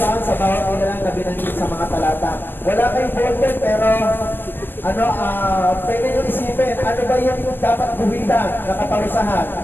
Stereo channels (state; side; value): late; right; 0.092 ms